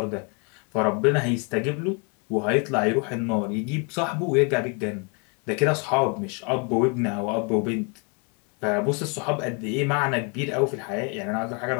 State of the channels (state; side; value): quieter; right; 34.4 dB